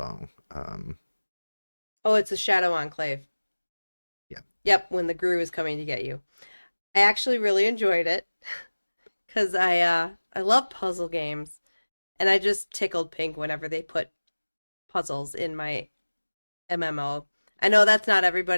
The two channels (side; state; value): both; inverted; correlation -1.00